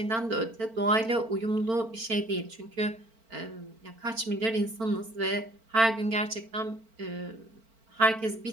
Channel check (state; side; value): late; left; 4.4 ms